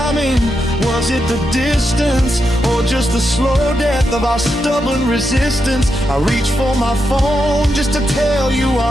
Was it the distance? or just the slow death of our stubborn resistance. I reach for my phone just to tell you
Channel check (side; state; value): both; normal; correlation 0.85